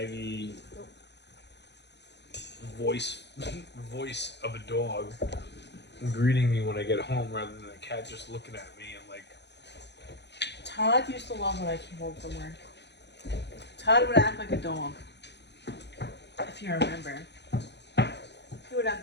voice of a dog greeting me when I get home rather than a cat just looking at me and like. Todd used to love when I came home from work. Todd would act like a dog. If you remember. He would act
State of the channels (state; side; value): late; right; 0.50 ms